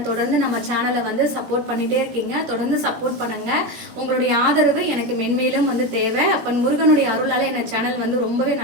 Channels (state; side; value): late; left; 17 ms